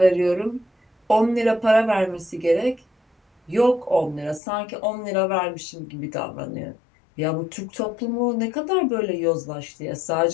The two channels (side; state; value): right; drops out; at 4.4 s